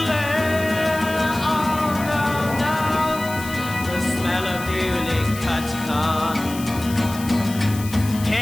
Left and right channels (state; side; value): noise; left; hiss, 13 dB below the sound